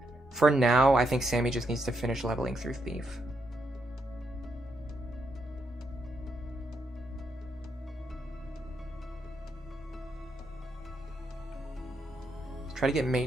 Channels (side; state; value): both; normal; correlation 0.79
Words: For now, I think Sammy just needs to finish leveling through Thief. Let's try to get